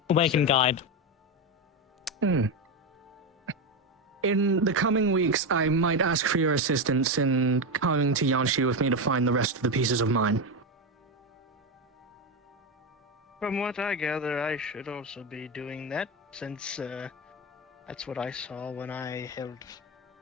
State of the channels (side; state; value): both; normal; correlation 0.12